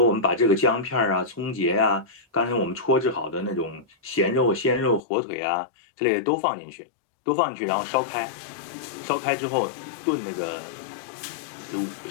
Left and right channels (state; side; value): drops out; right; at 5.0 s